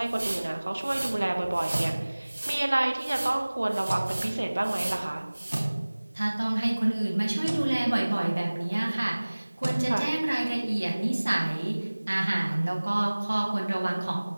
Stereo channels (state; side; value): inverted; both; correlation -1.00